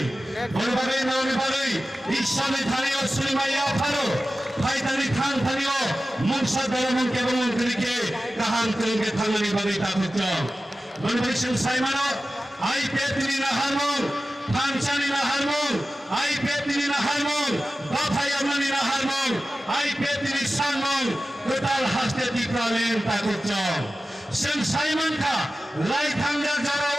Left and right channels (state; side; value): normal; both; correlation 0.95